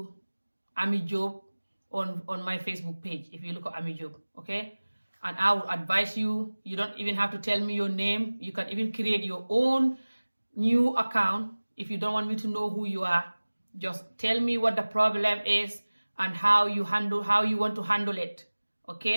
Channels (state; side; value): inverted; both; correlation -1.00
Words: Ami Job on my Facebook page if you look at Ami Job, okay? And I will advise you, you don't even have to tell me your name. You can even create your own new account if you don't want me to know who you are. Just tell me what the problem is and how you want to handle it,